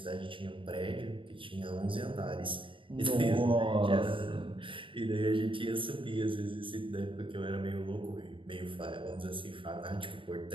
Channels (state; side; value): late; left; 0.25 ms